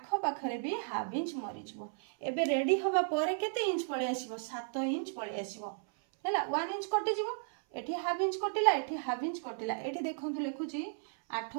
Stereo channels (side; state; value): left; silent; 55 dB below the other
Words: पाखरे भी हाफ इंच मरि जिवो एबे रेडी होबा परे केते इंच पळे आसीबो 7 इंच पळे आसीबो हैला 1 इंच कटि जिवो एठी हाफ इंच कटिला एठी हाफ इंच कटिला एठी देखंतु लेखुची 8